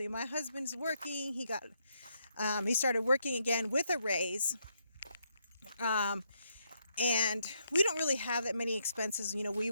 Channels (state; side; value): inverted; both; correlation -0.77